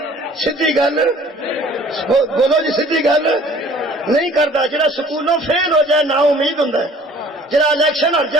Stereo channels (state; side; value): normal; both; correlation 0.52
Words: سیدھی گل بولو جی، سیدھی گل نہیں کرتا۔ جڑا سکولوں فیل ہو جائے نا امید ہوں، جڑا الیکشن ہر